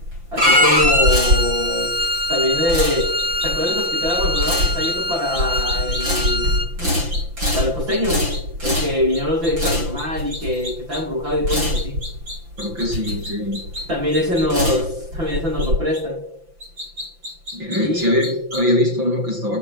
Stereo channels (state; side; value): late; left; 5.9 ms